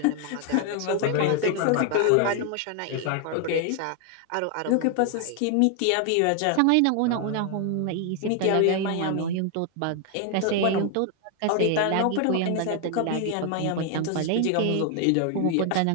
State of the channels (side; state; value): both; different; correlation 0.00